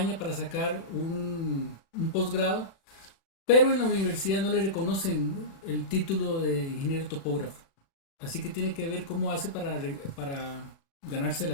para sacar un posgrado, pero en la universidad no le reconocen el título de ingeniero topógrafo. Así que tiene que ver cómo hace para ganarse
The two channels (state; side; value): late; right; 36 ms